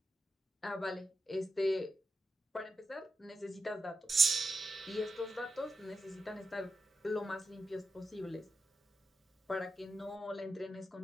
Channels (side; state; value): both; normal; correlation 0.85